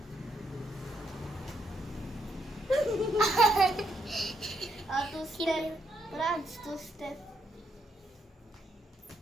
Two step. Franz, two step.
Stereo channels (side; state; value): both; normal; correlation 0.77